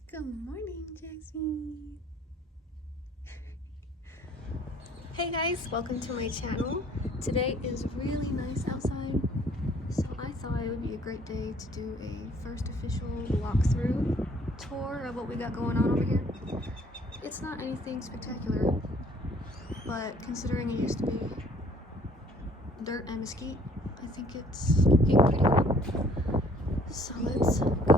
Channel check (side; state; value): both; normal; correlation 0.58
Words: Good morning, Jackson. Hey guys, welcome to my channel. Today is really nice outside, so I thought it would be a great day to do a first official walkthrough tour of what we got going on over here. It's not anything spectacular, but considering it used to be dirt and mesquite, I think it's getting pretty cool. So let's